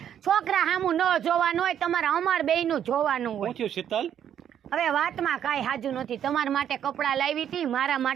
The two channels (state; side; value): quieter; left; 9.6 dB